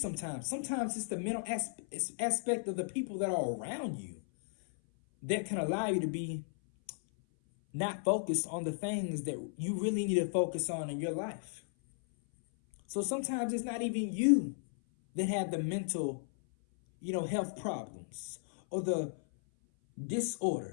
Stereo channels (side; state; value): right; silent; 54 dB below the other